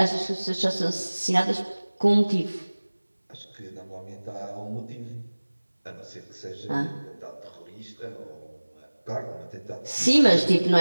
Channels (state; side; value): inverted; both; correlation -1.00